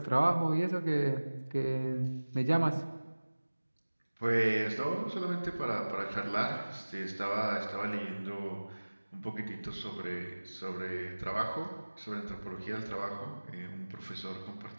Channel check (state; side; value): inverted; both; correlation -1.00